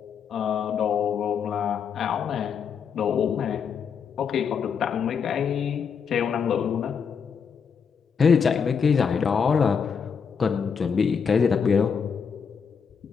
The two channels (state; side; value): quieter; right; 6.5 dB